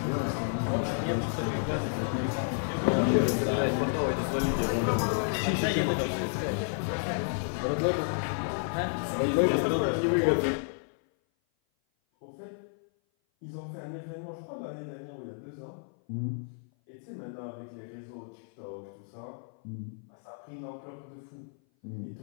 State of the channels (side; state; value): right; silent; 56 dB below the other